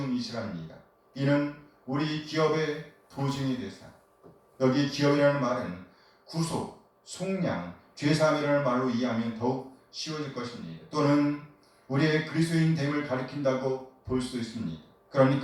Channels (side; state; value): both; identical; correlation 1.00